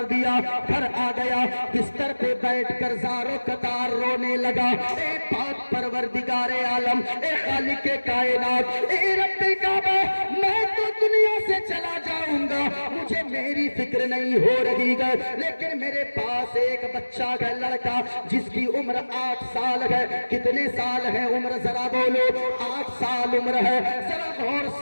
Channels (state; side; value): inverted; both; correlation -1.00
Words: دیا, گھر آ گیا, بستر پہ بیٹھ کر زاروں قطار رونے لگا. اے پاک پروردگار عالم, اے خالق کائنات, اے رب کعبہ, میں تو دنیا سے چلا جاؤں گا, مجھے میری فکر نہیں ہو رہی ہے, لیکن میرے پاس ایک بچہ ہے, لڑکا, جس کی عمر 8 سال ہے. کتنے سال ہے عمر؟ ذرا بولو. 8 سال عمر ہے. ذرا غور